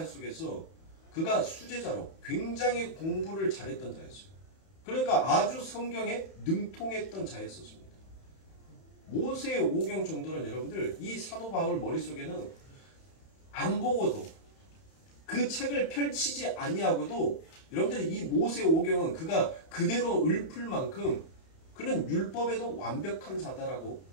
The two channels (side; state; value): right; late; 31 ms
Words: 속에서 그가 수제자로 굉장히 공부를 잘했던 자였어요. 그러니까 아주 성경에 능통했던 자였었습니다. 모세의 오경 정도는 여러분들 이 사도 바울 머릿속에는 안 보고도 그 책을 펼치지 아니하고도 여러분들이 이 모세 오경은 그가 그대로 읊을 만큼 그는 율법에도 완벽한 자다라고